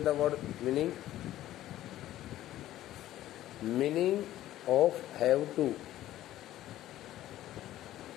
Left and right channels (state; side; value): quieter; right; 13.8 dB